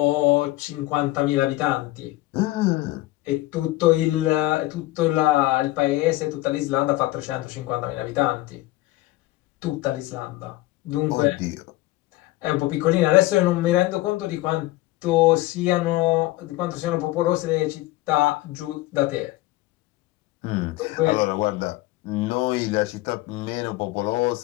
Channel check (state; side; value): quieter; right; 18.0 dB